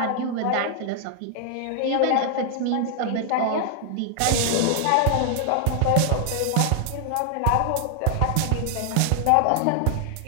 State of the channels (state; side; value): different; both; correlation 0.00